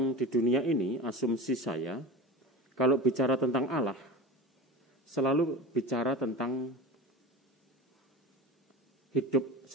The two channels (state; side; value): normal; both; correlation 0.33